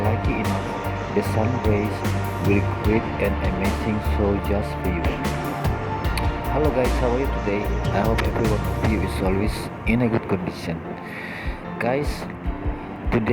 lucky enough, the sun rays will create an amazing show just for you. Hello guys, how are you today? I hope every one of you is always in a good condition. Guys,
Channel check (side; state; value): both; identical; correlation 1.00